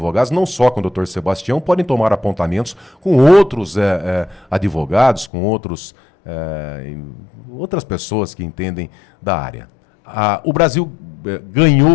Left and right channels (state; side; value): drops out; right; at 5.3 s